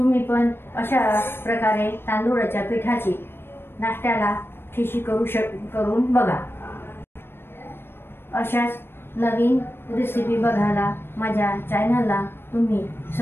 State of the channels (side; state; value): right; late; 0.11 ms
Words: पण अशा प्रकारे तांदूळाच्या पिठाची नाश्त्याला खिशी करून बघा. अशाच नवीन रेसिपी बघायला माझ्या चॅनलला तुम्ही